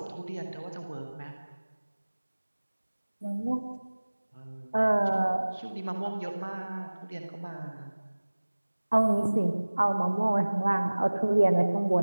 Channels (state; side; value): inverted; both; correlation -1.00